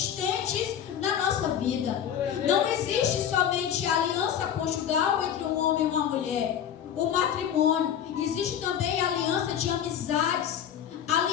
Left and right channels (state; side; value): quieter; right; 9.3 dB